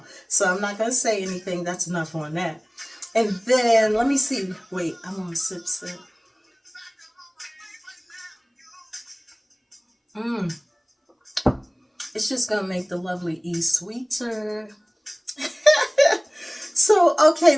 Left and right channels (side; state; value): both; identical; correlation 1.00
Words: So I'm not going to say anything. That's enough on that. And then, let me see. Wait, I want to sip. Mmm. It's just going to make the lovely E sweeter. So, okay,